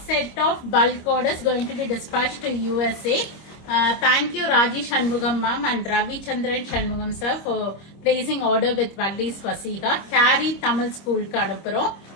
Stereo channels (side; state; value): right; late; 25 ms